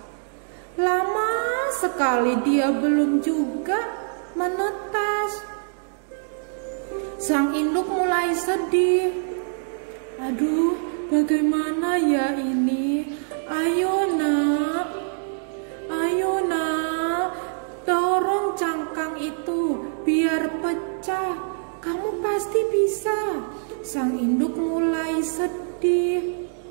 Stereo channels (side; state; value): left; silent; digital silence